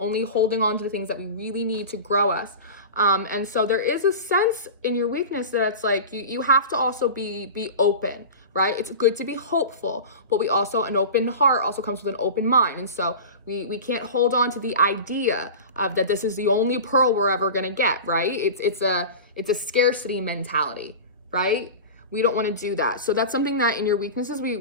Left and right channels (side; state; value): both; inverted; correlation -0.31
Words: holding on to the things that we really need to grow us. And so there is a sense in your weakness that it's like you have to also be open, right? It's good to be hopeful, but an open heart also comes with an open mind. And so we can't hold on to the idea of that this is the only pearl we're ever gonna get, right? It's a scarcity mentality, right? We don't want to do that. So that's something that in your weaknesses, we